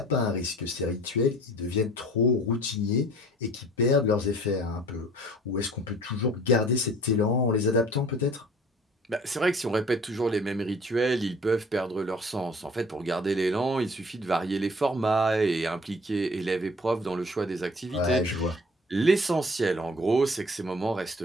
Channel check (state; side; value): normal; both; correlation 0.50